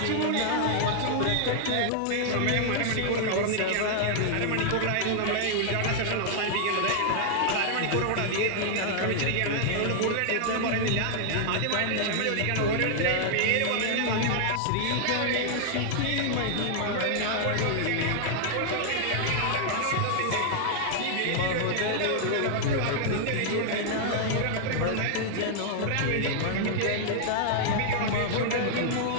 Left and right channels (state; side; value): different; both; correlation 0.00